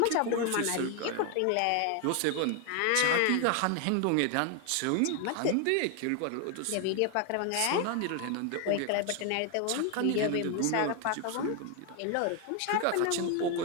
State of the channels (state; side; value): different; both; correlation 0.01